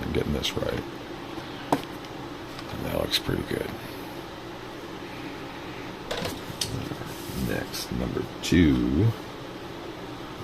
getting this right. And that looks pretty good. Next, number 2.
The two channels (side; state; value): both; identical; correlation 1.00